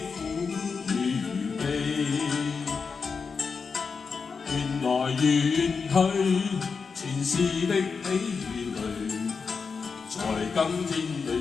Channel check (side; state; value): right; quieter; 5.2 dB